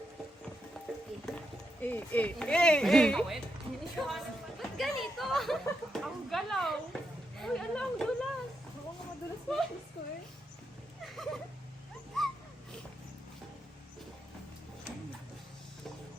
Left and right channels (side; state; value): both; normal; correlation 0.83